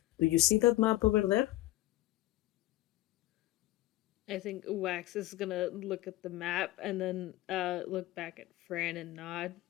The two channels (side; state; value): right; quieter; 16.6 dB